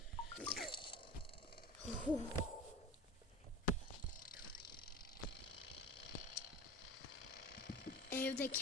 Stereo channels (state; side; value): normal; both; correlation 0.34